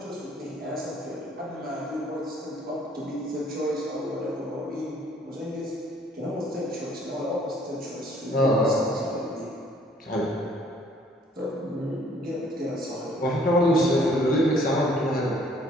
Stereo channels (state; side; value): normal; both; correlation 0.60